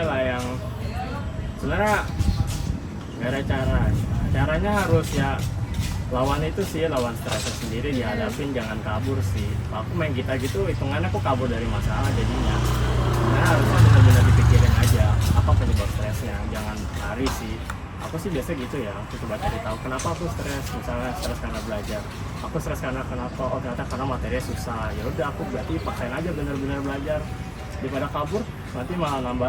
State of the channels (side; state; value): both; identical; correlation 1.00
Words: lah yang sebenarnya nggak ada caranya harus ya lawan itu sih, lawan stresnya sendiri, dihadapin, jangan kabur sih. Aku main gitar gitu hitungannya aku kabur dari masalah jadinya. Nah harusnya benar-benar dipikirin aja apa penyebab stresnya, jangan lari sih. Aku sih biasa gitu ya, aku coba cari tahu kenapa aku stres. Misalnya stres karena belajar, aku stres karena kenapa? Oh ternyata karena materinya susah. Ya udah aku berarti paksain aja benar-benar belajar, daripada kabur nanti malah nambah